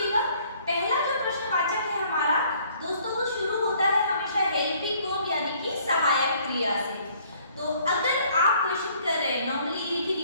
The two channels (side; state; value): both; inverted; correlation -0.60